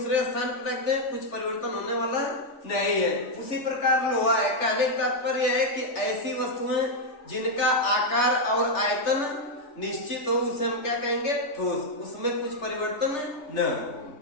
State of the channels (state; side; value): late; right; 3.3 ms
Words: स्थान पर रख दें, कुछ परिवर्तन होने वाला नहीं है। उसी प्रकार लोहा है। कहने का तात्पर्य है कि ऐसी वस्तुएं जिनका आकार और आयतन निश्चित हो उसे हम क्या कहेंगे? ठोस, उसमें कुछ परिवर्तन न हो।